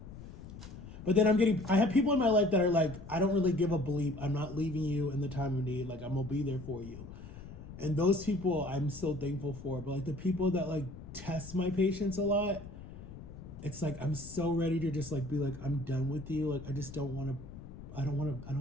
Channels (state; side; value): noise; left; rumble, 14 dB below the sound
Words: But then I have people in my life that are like, I don't really give a bleep. I'm not leaving you in the time of need. Like, I'm gonna be there for you. And those people I'm so thankful for. But like the people that like test my patience a lot, it's like, I'm so ready to just like be like, I'm done with you. Like, I don't want